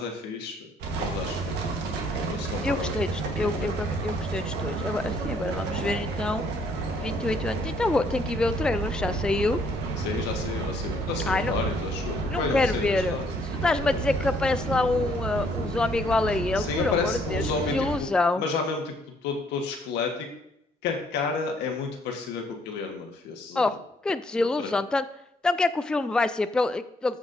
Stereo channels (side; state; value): both; normal; correlation 0.66